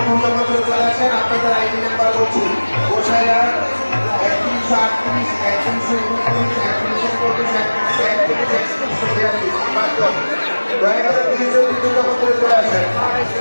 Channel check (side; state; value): both; inverted; correlation -1.00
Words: পূর্ণ করে চলে আসেন। আপনাদের আইডি নাম্বার বলছি গোসাইয়া 3138 দয়া করে দুই ছবি পূর্ণ করে চলে আসেন।